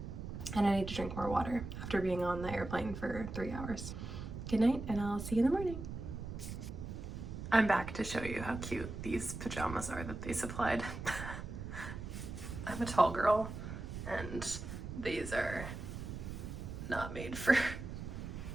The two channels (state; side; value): noise; right; rumble, 7 dB below the sound